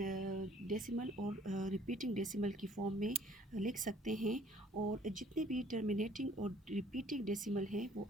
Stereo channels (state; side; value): normal; both; correlation 0.57